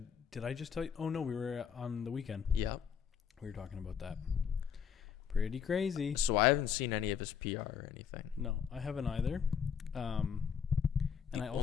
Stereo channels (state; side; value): quieter; right; 7.5 dB